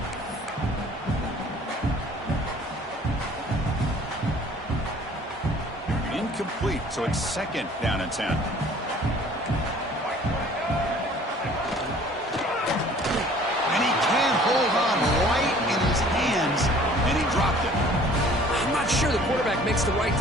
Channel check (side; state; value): both; normal; correlation 0.52